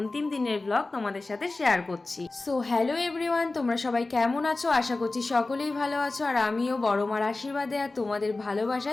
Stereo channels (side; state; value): right; quieter; 3.3 dB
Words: দিনের ব্লগ তোমাদের সাথে শেয়ার করছি। সো হ্যালো এভরিওয়ান, তোমরা সবাই কেমন আছো? আশা করছি সকলেই ভালো আছো, আর আমিও বড় মার আশীর্বাদে আর তোমাদের